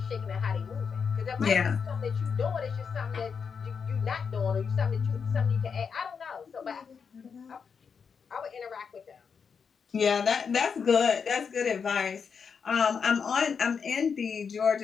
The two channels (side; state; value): right; quieter; 6.2 dB